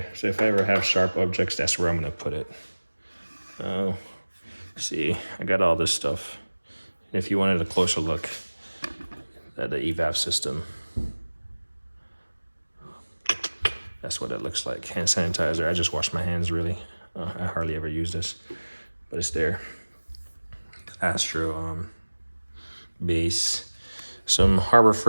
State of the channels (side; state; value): both; inverted; correlation -1.00